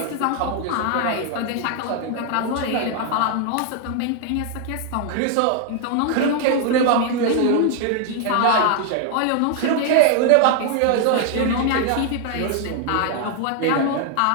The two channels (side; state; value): both; different; correlation 0.00